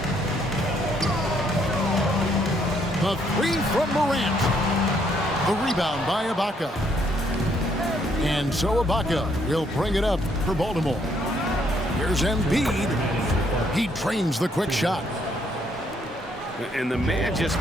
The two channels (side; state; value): both; normal; correlation 0.70